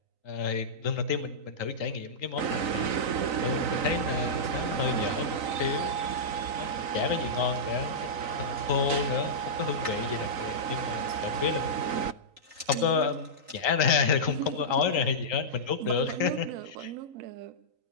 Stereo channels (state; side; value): late; left; 3.9 ms